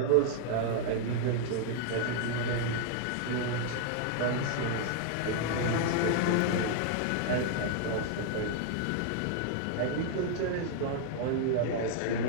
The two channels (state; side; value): different; both; correlation 0.00